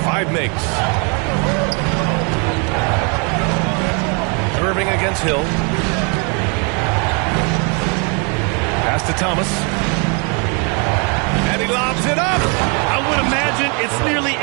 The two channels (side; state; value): left; quieter; 35.3 dB